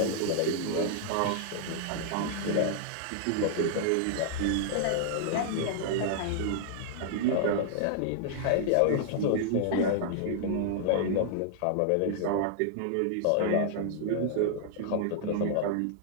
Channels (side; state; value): both; different; correlation -0.01